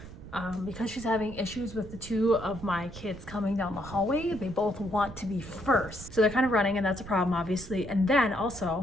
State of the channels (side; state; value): right; noise; rumble, 14 dB below the sound